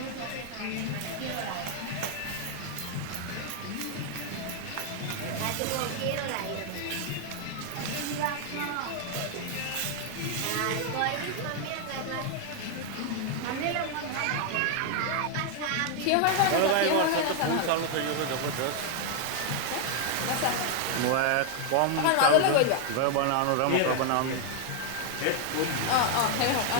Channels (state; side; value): different; both; correlation 0.00